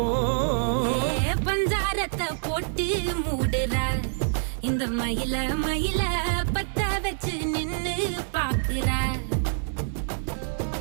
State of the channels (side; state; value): left; silent; digital silence